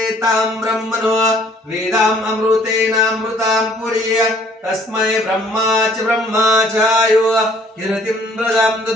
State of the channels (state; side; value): normal; both; correlation 0.59